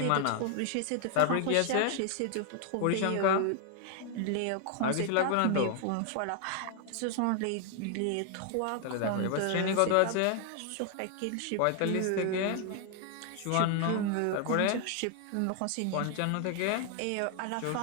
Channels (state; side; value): different; both; correlation 0.00